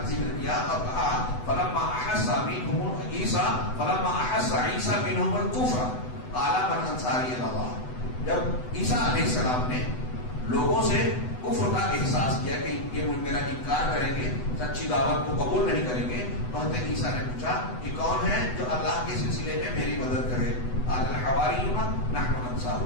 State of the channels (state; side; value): late; right; 8.0 ms